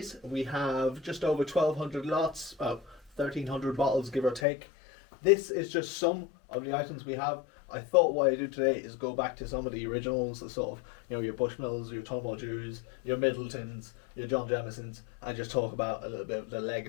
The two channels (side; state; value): right; drops out; at 4.5 s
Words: We have just over 1,200 lots, about 1,300 bottles give or take. This is just some of the items we have. I thought what I do today is go back to some of the originals, the sort of, your Bushmills, your Tullamore Dews, your Midletons, your John Jamesons, and just talk about a little bit of the